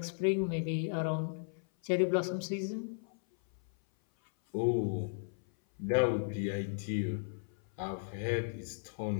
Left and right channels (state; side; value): silent; right; 54 dB below the other